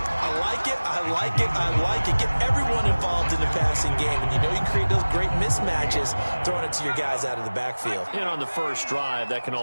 I like it, I like it, I like it. Get everyone involved in the passing game. And you know you can create those great mismatches throwing it to your guys out of the backfield. And on the first drive, that can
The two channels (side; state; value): both; inverted; correlation -1.00